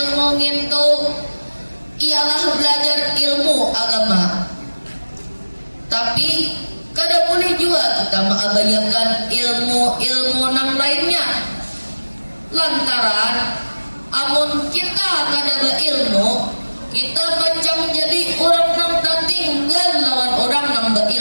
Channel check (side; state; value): both; inverted; correlation -1.00